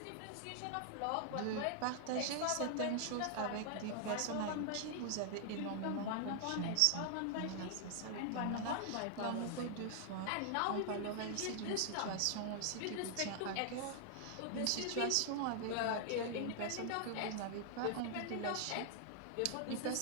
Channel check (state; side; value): different; both; correlation 0.00